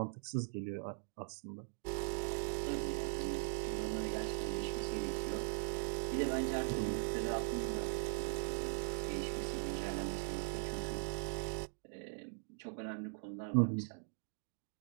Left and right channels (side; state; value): left; silent; digital silence